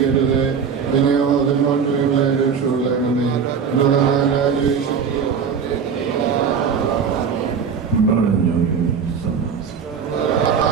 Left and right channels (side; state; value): left; quieter; 6.6 dB